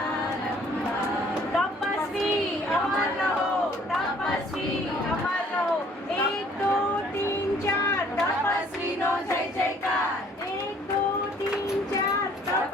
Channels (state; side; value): normal; both; correlation 0.58